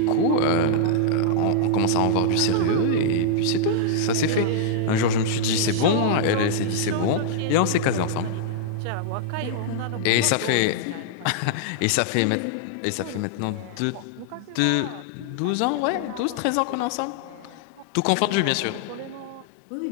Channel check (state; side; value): different; both; correlation -0.01